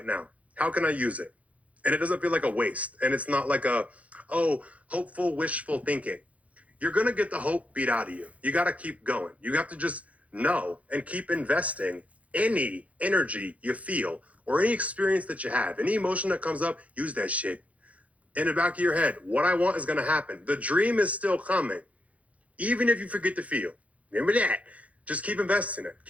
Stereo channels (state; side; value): late; left; 0.066 ms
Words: now? How can I use it? And it doesn't feel like a waste. And it's not like hopeful, wishful thinking. You're going to get the hope beat out of you. You got to keep going. You have to just know and keep investing any energy you feel or any experience that you have, any emotion that comes up, use that shit. In the back of your head, what I want is going to happen. The dream is still coming, even if you forget to feel. Remember that. Just keep investing it.